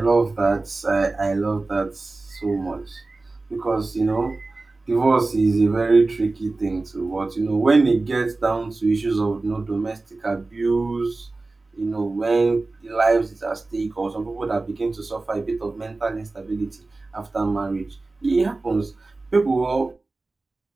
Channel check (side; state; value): left; quieter; 3.4 dB